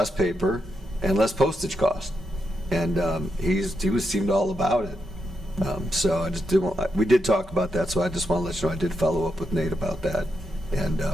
paper and less postage cost. And he seemed all about it. So I just we did talk about that, so I just want to let you know I did follow up with Nate about that. And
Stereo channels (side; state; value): both; normal; correlation 0.83